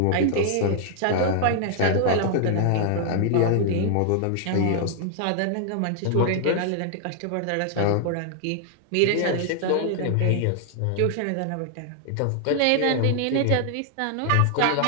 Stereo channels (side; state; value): both; different; correlation 0.00